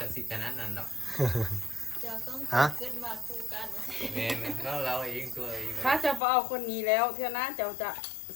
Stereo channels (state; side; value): drops out; right; at 6.2 s